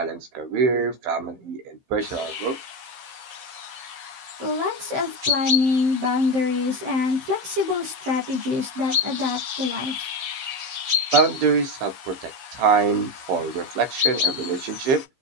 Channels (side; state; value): left; late; 15 ms